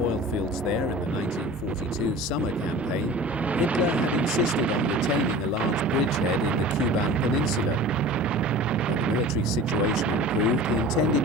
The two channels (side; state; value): both; normal; correlation 0.40